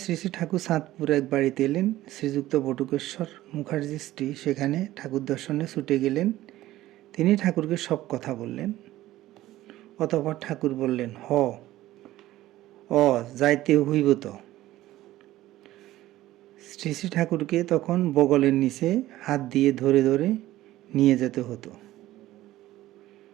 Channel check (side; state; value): left; quieter; 15.5 dB